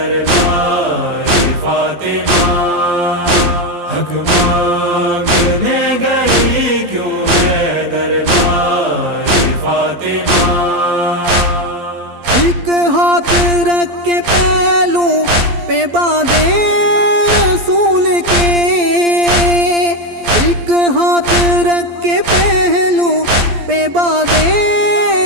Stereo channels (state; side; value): late; left; 12 ms